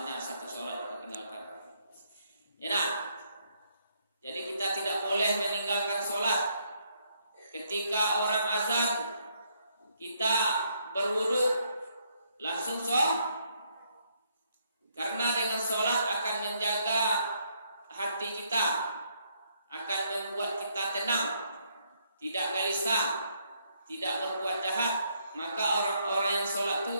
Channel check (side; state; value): both; inverted; correlation -0.72